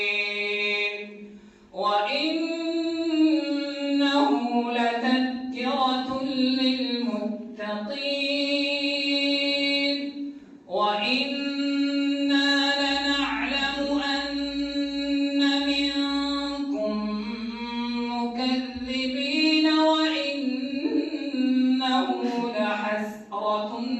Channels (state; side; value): identical; both; correlation 1.00